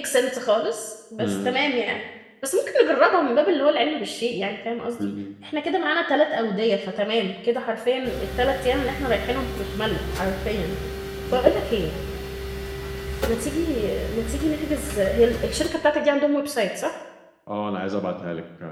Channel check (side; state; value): both; identical; correlation 1.00